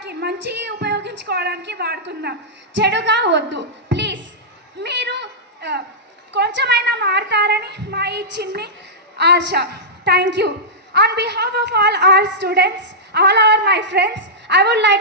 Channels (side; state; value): both; normal; correlation -0.13